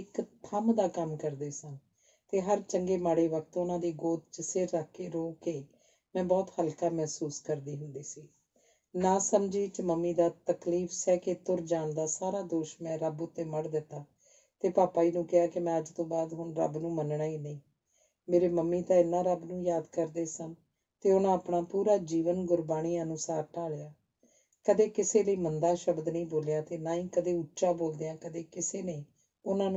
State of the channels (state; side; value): identical; both; correlation 1.00